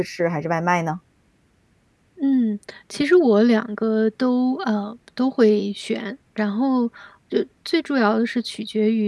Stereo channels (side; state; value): both; identical; correlation 1.00